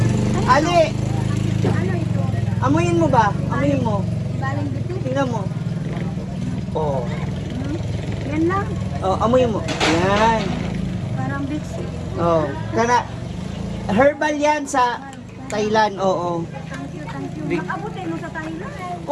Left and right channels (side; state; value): both; identical; correlation 1.00